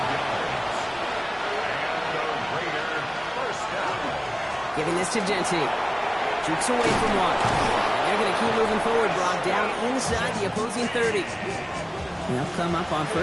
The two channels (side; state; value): both; identical; correlation 1.00